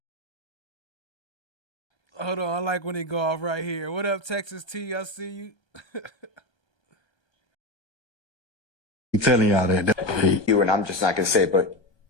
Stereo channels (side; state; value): right; late; 1.3 ms